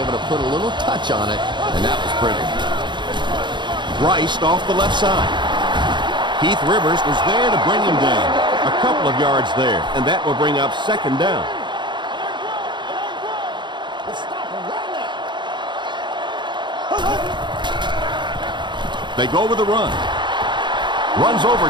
able to put a little touch on it, and that was pretty. Rice off the left side. Keith Rivers was there to bring him down. A couple of yards there, and that will bring up second down. They go with a run. Runs over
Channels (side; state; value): left; late; 0.22 ms